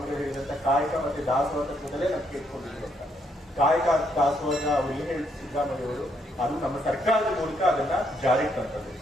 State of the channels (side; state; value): both; normal; correlation 0.73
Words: ಹೇಳಿದಂತ ಕಾಯಕ ಮತ್ತೆ ದಾಸೋಹ ತತ್ವದಲ್ಲೇ ನಾವು ಕೇಳ್ಕೊಂಡಿದ್ರು ಅಂತ. ಕಾಯಕ ದಾಸೋಹ ಅವ್ರು ಏನ್ ಹೇಳ್ತಾರೆ ಸಿದ್ದರಾಮಯ್ಯ ಅವರು, ಅದು ನಮ್ಮ ಸರ್ಕಾರದ ಮೂಲಕ ಅದನ್ನ ಜಾರಿಗೆ ತಂತದ್ದು.